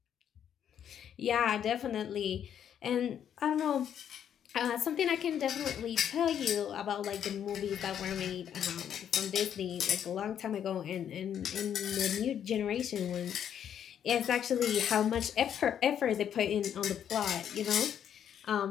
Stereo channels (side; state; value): right; quieter; 9.2 dB